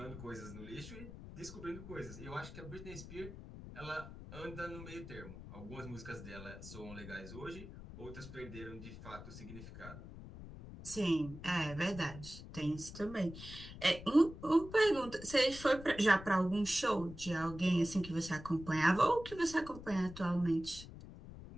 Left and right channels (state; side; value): noise; left; rumble, 13 dB below the sound